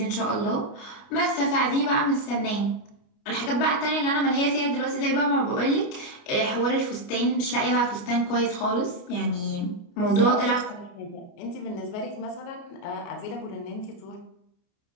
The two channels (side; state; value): right; late; 29 ms